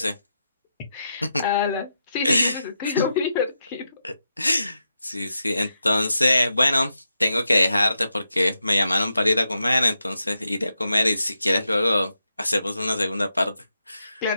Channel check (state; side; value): inverted; both; correlation -0.85